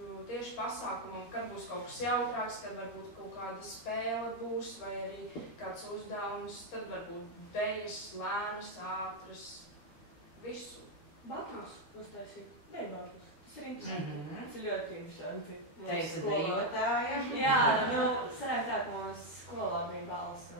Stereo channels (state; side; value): late; right; 13 ms